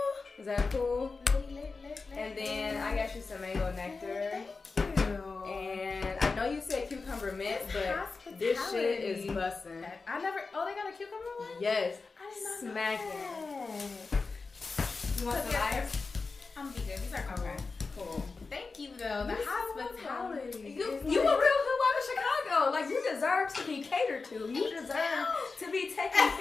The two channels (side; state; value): right; quieter; 4.2 dB